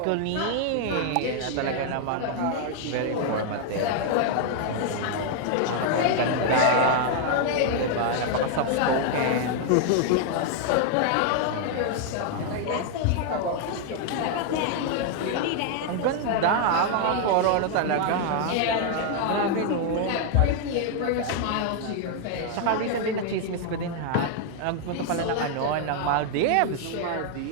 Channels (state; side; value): different; both; correlation 0.00